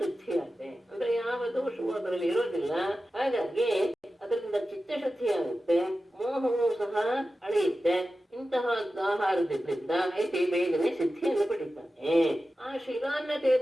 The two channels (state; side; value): normal; both; correlation 0.93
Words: ಆಗುತ್ತೆ. ಅಂದ್ರೆ ಯಾವ ದೋಷವೂ ಅದರಲ್ಲಿ ಇರೋದಿಲ್ಲ. ಹಾಗಾಗಿ ಅದರಿಂದ ಚಿತ್ತಶುದ್ಧಿ ಮೋಹವು ಸಹ ಅಳೆಯುತ್ತೆ. ಇಂತಹ ಆಹಾರದಿಂದ ಬೇಗನೆ ಸಿದ್ಧಿಯನ್ನು ಪಡಿತಾನೆ. ಆ ಶಿಲಾನ್ನ